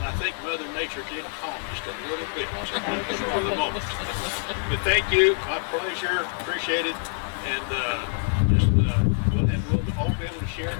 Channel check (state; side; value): silent; right; 58 dB below the other